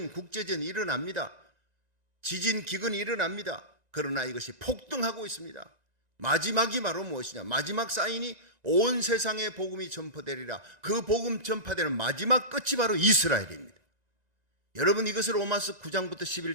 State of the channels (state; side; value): late; left; 1.9 ms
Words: 국제전이 일어납니다. 지진, 기근이 일어납니다. 그러나 이것이 폭등하고 있습니다. 마지막이 바로 무엇이냐? 마지막 사인이 온 세상에 복음이 전파되리라. 그 복음 전파되는 마지막 끝이 바로 이스라엘입니다. 여러분 이것을 로마서 9장부터